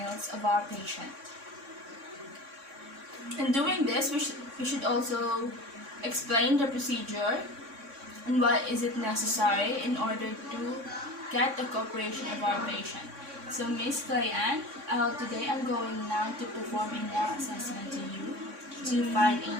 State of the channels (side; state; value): left; late; 3.6 ms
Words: of our patient. In doing this, we should also explain the procedure and what is it necessary in order to get the cooperation of our patient. So Miss Clayan, today I'm going now to perform a nail assessment to you. to find